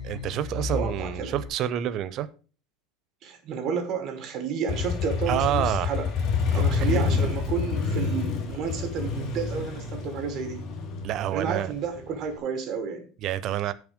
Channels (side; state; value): both; normal; correlation 0.38